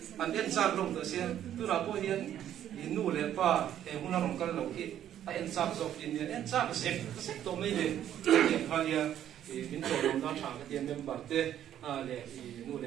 anh em sang lồng tới xia tôi là coi hiện nu lệ pa em muốn làm cái lồng kia anh sang dọc hiện em sang cái xếp tổ mấy này hiện khai ya mình tổ lồng đó chẳng cái tiền em bảo thế lệ nu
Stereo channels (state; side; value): quieter; left; 10.9 dB